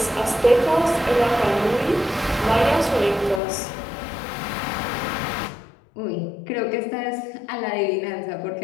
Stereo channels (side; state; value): right; drops out; at 3.4 s